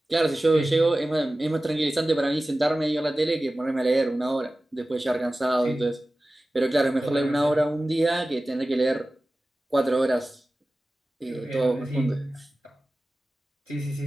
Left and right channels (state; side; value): normal; both; correlation 0.96